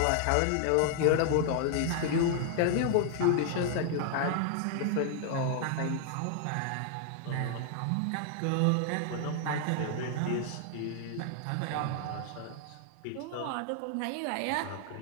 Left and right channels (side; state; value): both; different; correlation 0.00